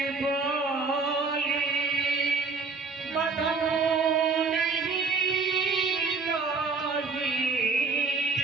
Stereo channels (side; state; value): left; quieter; 4.5 dB